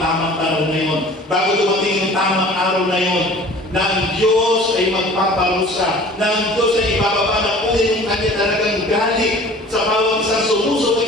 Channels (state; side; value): normal; both; correlation 0.46